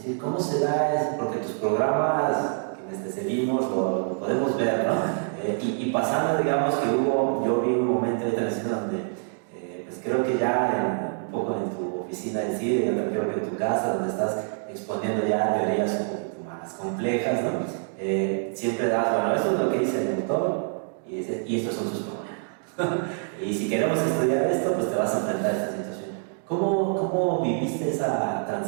¿cómo se da eso? Porque tus programas, quienes te seguimos, lo podemos ver, ¿no? Y pasando, digamos, que yo vi un momento de televisión donde, pues creo que ya un poco en tu oficina de CIDE, yo creo que en tu casa, donde estás exponiendo ya teorías un poquito más complejas, ¿no? Siempre das, bueno, esto es lo que dice el autor, y estos son sus problemas. Y si queremos estudiar esto, pues te vas a enfrentar a esta situación. ¿Cómo viviste esa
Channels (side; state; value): left; silent; 58 dB below the other